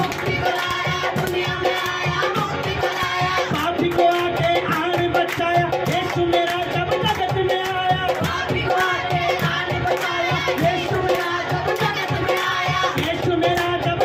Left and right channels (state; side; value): identical; both; correlation 1.00